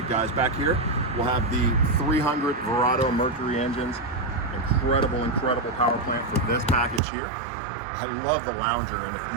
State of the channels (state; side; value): drops out; left; at 7.0 s